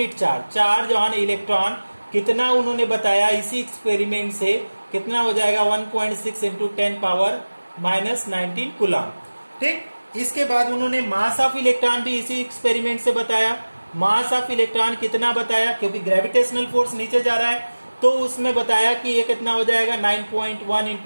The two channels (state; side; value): inverted; both; correlation -1.00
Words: charge on electron कितना उन्होंने बताया इसी एक्सपेरिमेंट से, कितना हो जाएगा 1.6 इंटू 10 पावर माइनस 19 कूलम। ठीक, इसके बाद उन्होंने मास ऑफ इलेक्ट्रॉन भी इसी एक्सपेरिमेंट से बताया। मास ऑफ इलेक्ट्रॉन कितना बताया, क्योंकि ग्रेविटेशनल फोर्स नीचे जा रहा है, तो उसमें बताया कि ये कितना हो जाएगा 9.1